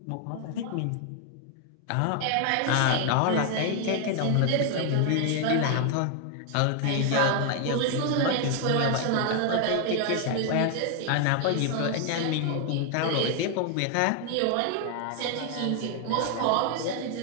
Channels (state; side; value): different; both; correlation 0.00